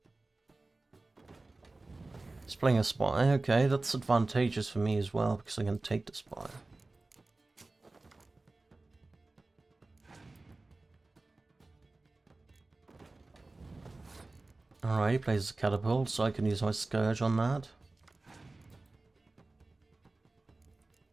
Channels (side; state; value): left; quieter; 3.2 dB